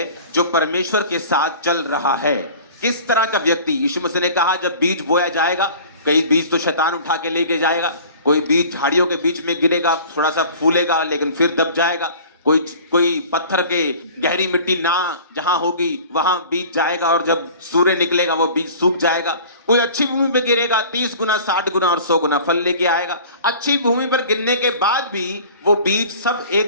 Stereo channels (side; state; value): both; inverted; correlation -0.44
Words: जो परमेश्वर के साथ चल रहा है। किस तरह का व्यक्ति? यीशु मसीह ने कहा जब बीज बोया जाएगा, कई बीज तो शैतान उठा के लेके जाएगा, कोई बीज झाड़ियों के बीच में गिरेगा, थोड़ा सा फूलेगा लेकिन फिर दब जाएगा, कोई पत्थर के गहरी मिट्टी ना जहां होगी वहां बीज जाएगा और जब सूर्य निकलेगा वो बीज सूख जाएगा। कोई अच्छी भूमि पर गिरेगा, 30 गुना 60 गुना और 100 गुना फल लेके आएगा। अच्छी भूमि पर गिरने के बाद भी वो बीज सब